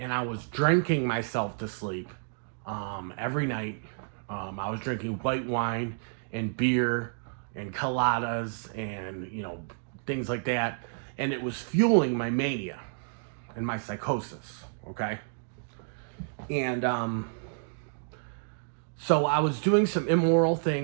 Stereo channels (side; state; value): left; silent; digital silence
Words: I was drinking myself to sleep every night. I was drinking white wine and beer and coladas and, things like that. And it was fueling my mania and my psychosis, okay? And so I was doing some immoral